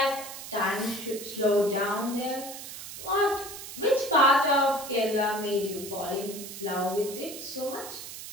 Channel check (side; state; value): right; noise; hiss, 11 dB below the sound